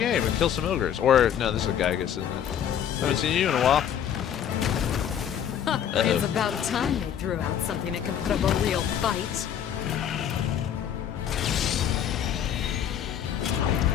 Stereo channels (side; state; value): right; quieter; 9.2 dB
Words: and kill some ogres. Or, no, this is a Gygus, isn't it? Haven't seen you in a while. It's about time they threw out something that can put up a real fight.